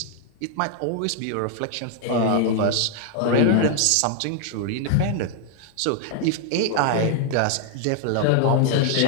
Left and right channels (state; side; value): different; both; correlation 0.00